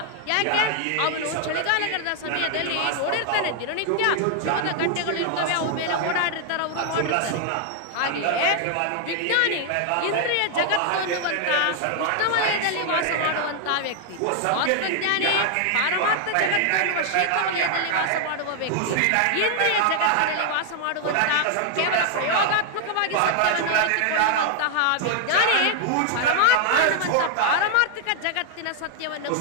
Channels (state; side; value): different; both; correlation 0.00